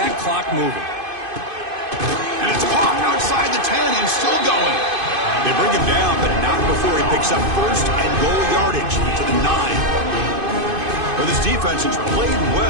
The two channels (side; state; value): left; late; 2.5 ms